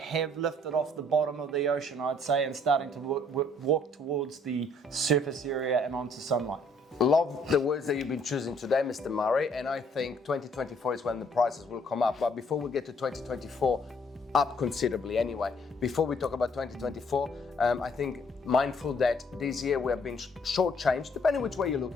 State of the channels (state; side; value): normal; both; correlation 0.64